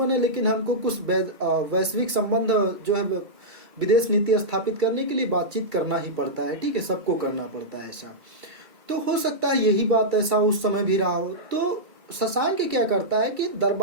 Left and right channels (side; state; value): left; late; 2.3 ms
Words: है, लेकिन हमको कुछ वैश्विक संबंध जो है विदेश नीति स्थापित करने के लिए बातचीत करना ही पड़ता है। ठीक है, सबको करना पड़ता है ऐसा। तो हो सकता है यही बात ऐसा उस समय भी रहा हो। तो शशांक क्या करता है कि